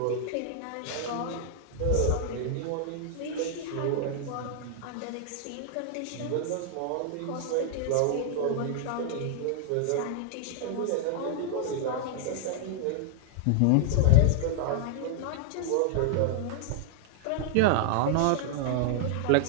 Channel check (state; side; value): different; both; correlation -0.01